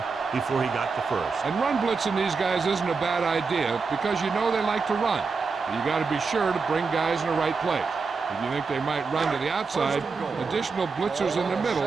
before he got the first. And run blitzing these guys isn't a bad idea because you know they like to run. But you got to be sure to bring guys in the right place. If you think they might run to the outside, additional blitzers in the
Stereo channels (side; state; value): left; quieter; 4.7 dB